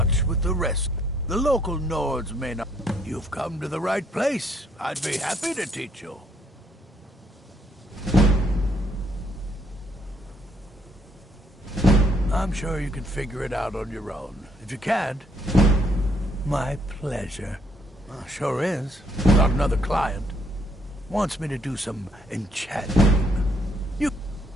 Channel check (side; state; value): both; normal; correlation 0.69